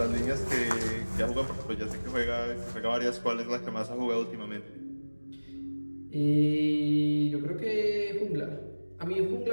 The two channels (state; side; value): inverted; both; correlation -1.00